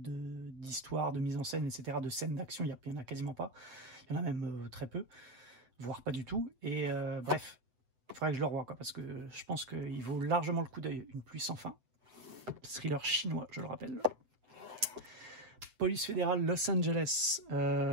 de mise en scène, etc., de scènes d'action. Il n'y en a quasiment pas. Il y en a même très peu, voire pas du tout. Et bref. Il faudrait que je le revoie, quoi, parce que je pense qu'il vaut largement le coup d'œil. Une pluie sans fin. Thriller chinois, je le rappelle. Police fédérale Los Angeles.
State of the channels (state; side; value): late; left; 7.9 ms